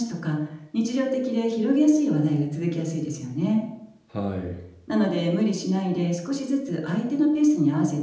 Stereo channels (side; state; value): both; identical; correlation 1.00